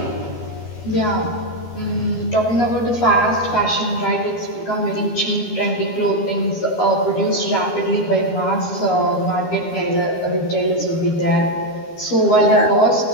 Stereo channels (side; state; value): right; late; 12 ms